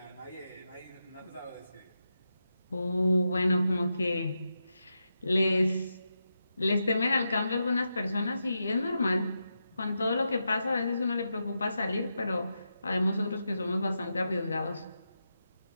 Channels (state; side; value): inverted; both; correlation -0.87